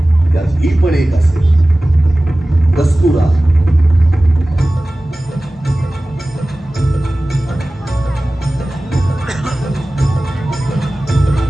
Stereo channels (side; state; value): both; normal; correlation 0.97